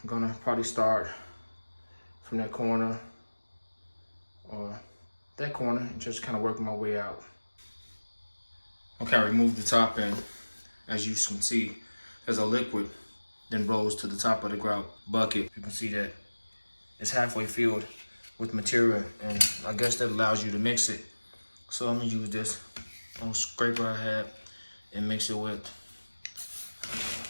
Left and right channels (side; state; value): both; inverted; correlation -1.00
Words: gonna probably start from that corner or that corner and just kind of work my way out. Okay, I removed the top end. As you can see, there's a liquid then rolls to the top of the grout bucket. You can see that it's halfway filled with material, and I guess that allows you to mix it. So I'm gonna use this little scraper I had and mix it with.